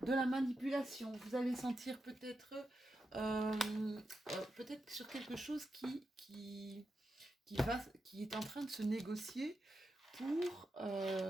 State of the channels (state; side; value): normal; both; correlation 0.88